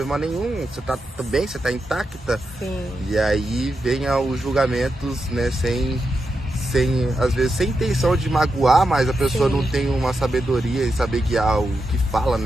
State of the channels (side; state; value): both; normal; correlation 0.87